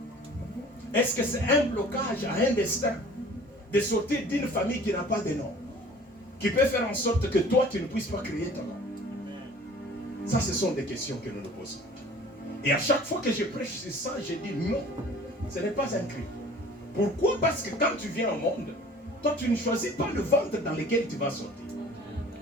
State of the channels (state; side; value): normal; both; correlation 0.47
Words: Est-ce que c'est un blocage à un destin de sortir d'une famille qui n'a pas de nom, qui peut faire en sorte que toi tu ne puisses pas créer ton nom? Ça, ce sont des questions que nous nous posons. Et à chaque fois que je prêche sur ça, je dis non, ce n'est pas un crime. Pourquoi? Parce que quand tu viens au monde, toi tu ne choisis pas le ventre dans lequel tu vas sortir.